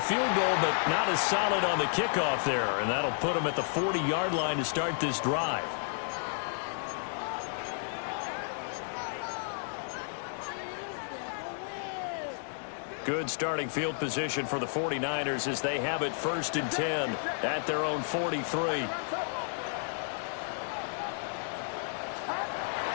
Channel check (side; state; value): right; silent; digital silence